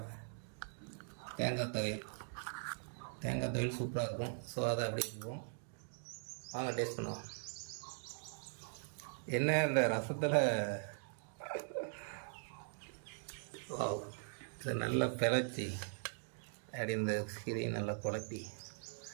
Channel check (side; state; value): left; silent; digital silence